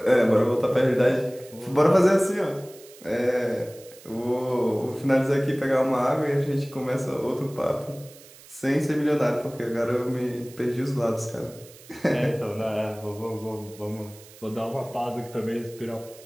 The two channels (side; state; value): right; noise; hiss, 21 dB below the sound